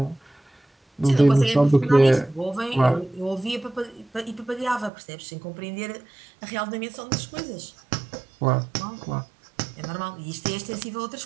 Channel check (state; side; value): drops out; left; at 4.9 s